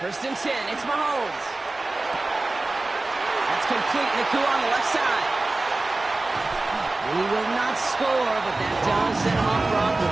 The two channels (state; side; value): quieter; left; 3.1 dB